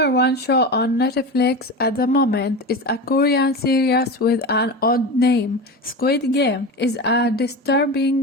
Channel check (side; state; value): both; normal; correlation 0.25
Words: one show on Netflix at the moment is a Korean series with an odd name. Squid Game is a